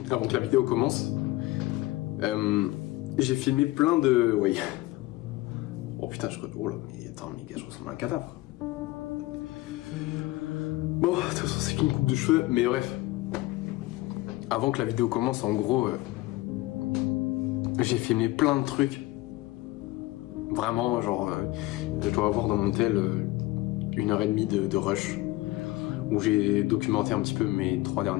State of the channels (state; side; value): quieter; right; 19.0 dB